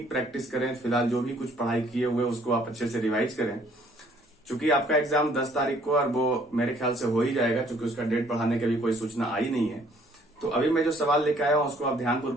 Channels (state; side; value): normal; both; correlation 0.61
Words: प्रैक्टिस करें। फिलहाल जो भी कुछ पढ़ाई किए हुए उसको आप अच्छे से रिवाइज करें। चूंकि आपका एग्जाम 10 तारीख को और वो मेरे ख्याल से हो ही जाएगा, क्योंकि उसका डेट बढ़ाने की भी कोई सूचना आई नहीं है। तो अभी मैं जो सवाल लेके आया हूं उसको आप